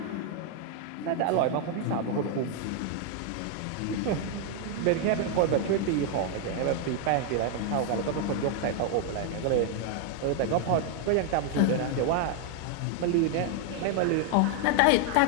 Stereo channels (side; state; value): both; different; correlation 0.00